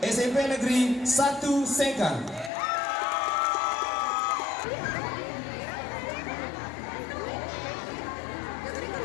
SMP Negeri 1 Sekang.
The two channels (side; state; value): right; drops out; at 2.5 s